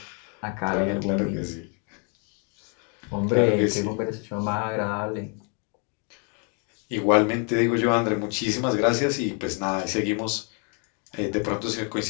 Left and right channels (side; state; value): right; quieter; 37.6 dB